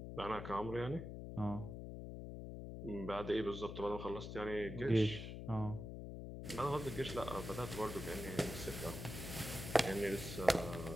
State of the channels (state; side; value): noise; left; hum, 7 dB below the sound